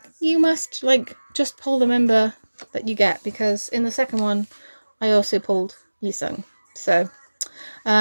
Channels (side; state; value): both; inverted; correlation -1.00